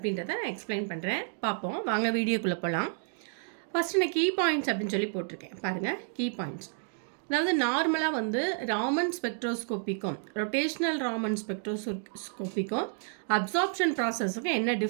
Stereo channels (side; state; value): left; silent; 58 dB below the other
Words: நான் எக்ஸ்பிளைன் பண்ணுறேன். பார்ப்போம் வாங்க வீடியோக்குள்ளே போகலாம். ஃபஸ்ட்டு நான் கீ பாயிண்ட்ஸ் அப்படின்னு சொல்லி போட்டிருக்கேன் பாருங்கள். கீ பாயிண்ட்ஸ் அதாவது நார்மலாக வந்து ராமன் ஸ்பெக்ட்ரோஸ்கோப்பிக்கும் ரொட்டேஷ்னல் ராமன் ஸ்பெக்ட்ரோஸ்கோப்பிக்கும் அப்சார்ப்ஷன் ப்ராசஸுக்கும் என்ன